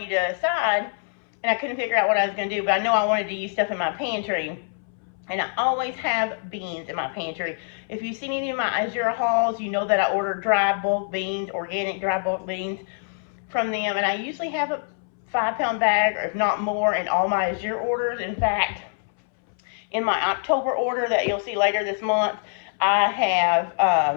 a side, and I couldn't figure out what I was going to do, but I know I wanted to use stuff in my pantry. And I always have beans in my pantry. If you've seen any of my Azure hauls, you know that I order dry bulk beans, organic dry bulk beans from them. And I usually have a 5-pound bag, or if not more, in all my Azure orders. In fact, in my October order that you'll see later this month, I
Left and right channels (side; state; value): right; silent; 62 dB below the other